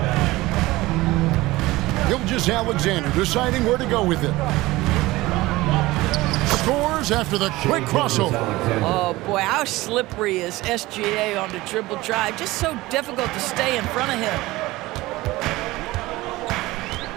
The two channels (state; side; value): quieter; left; 19.2 dB